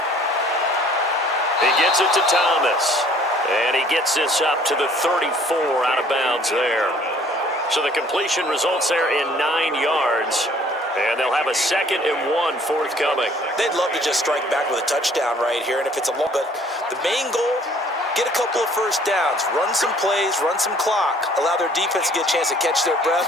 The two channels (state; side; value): normal; both; correlation 0.57